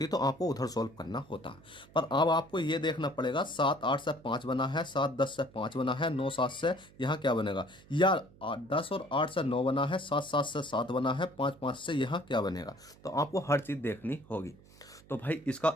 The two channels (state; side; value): noise; right; hum, 24 dB below the sound